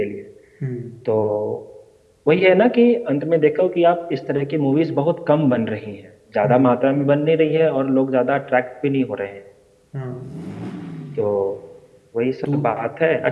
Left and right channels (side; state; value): both; identical; correlation 1.00